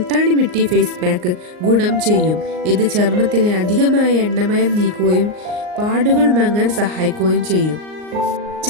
മിട്ടി ഫേസ് പാക്ക് ഗുണം ചെയ്യും. ഇത് ചർമ്മത്തിലെ അധികമായ എണ്ണമയം നീക്കുകയും പാടുകൾ മങ്ങാൻ സഹായിക്കുകയും ചെയ്യും.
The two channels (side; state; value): left; late; 38 ms